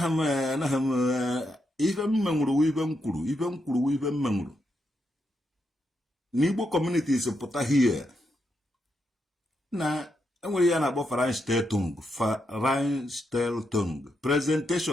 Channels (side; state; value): both; normal; correlation 0.82